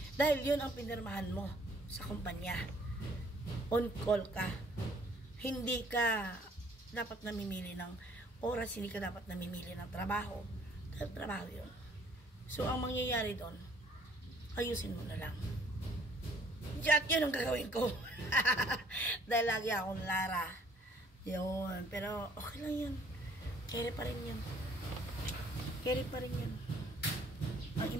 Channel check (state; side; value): normal; both; correlation 0.60